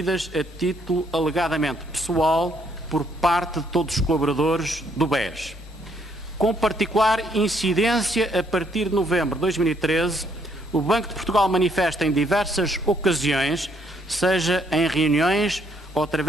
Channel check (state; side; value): normal; both; correlation 0.69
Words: a título alegadamente pessoal por parte de todos os colaboradores do BES. Com particular incidência, a partir de novembro de 2013, o Banco de Portugal manifesta em diversas ocasiões, seja em reuniões ou